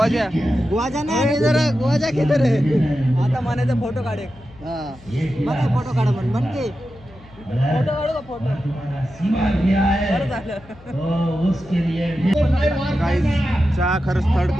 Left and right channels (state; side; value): noise; left; hum, 23 dB below the sound